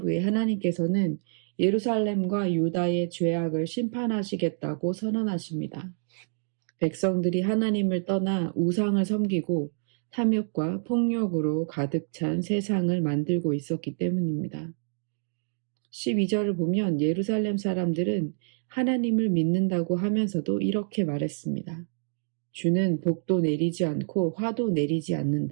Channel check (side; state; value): left; silent; digital silence